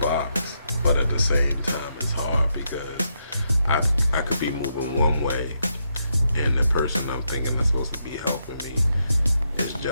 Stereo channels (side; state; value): both; inverted; correlation -0.81